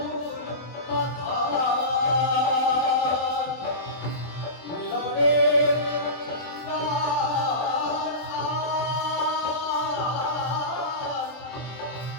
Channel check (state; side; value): late; right; 23 ms